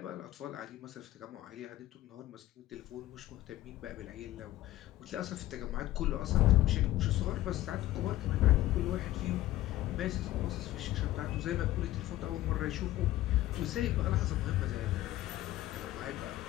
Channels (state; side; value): quieter; right; 15.3 dB